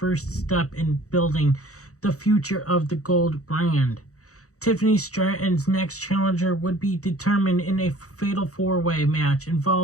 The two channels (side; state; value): right; late; 0.65 ms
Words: step in building the future of the Gold brand. Tiffany Stratton's next challenger would be determined in a fatal four-way match